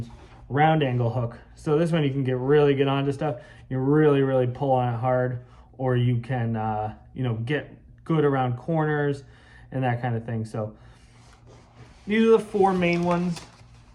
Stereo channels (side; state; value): both; identical; correlation 1.00